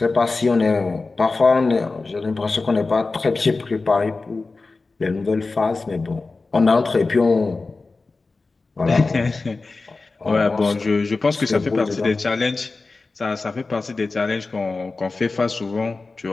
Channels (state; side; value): quieter; right; 3.7 dB